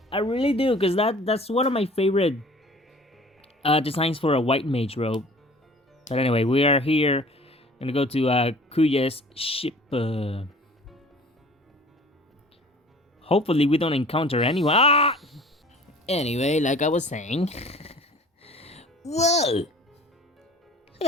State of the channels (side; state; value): both; normal; correlation 0.47